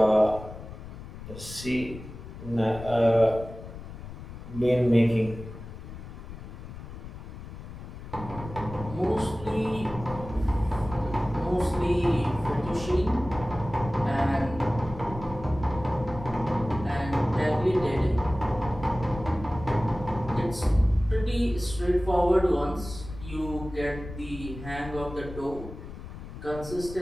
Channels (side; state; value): left; noise; rumble, 12 dB below the sound